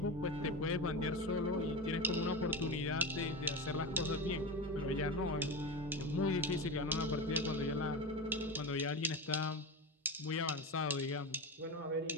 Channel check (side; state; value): both; normal; correlation 0.21